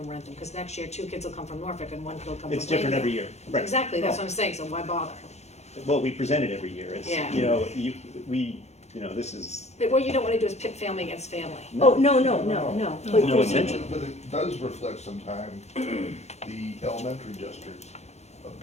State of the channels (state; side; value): late; right; 0.32 ms